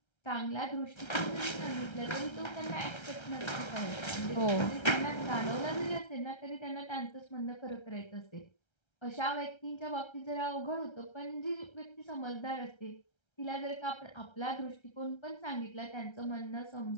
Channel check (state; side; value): late; right; 1.3 ms